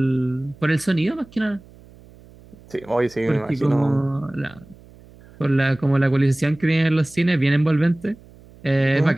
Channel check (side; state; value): right; noise; hum, 24 dB below the sound